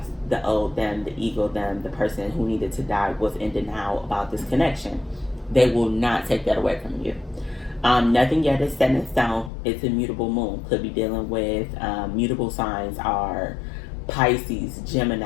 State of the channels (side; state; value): right; drops out; at 9.5 s